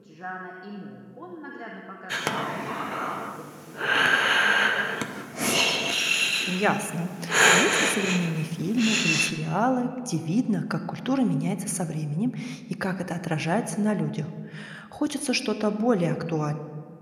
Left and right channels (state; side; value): identical; both; correlation 1.00